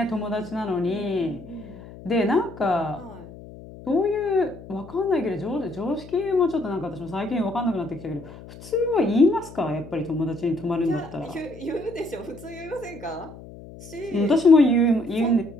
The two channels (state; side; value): noise; left; hum, 16 dB below the sound